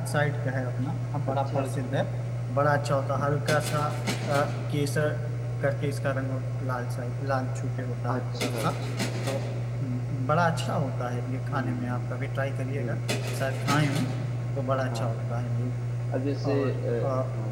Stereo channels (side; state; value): both; identical; correlation 1.00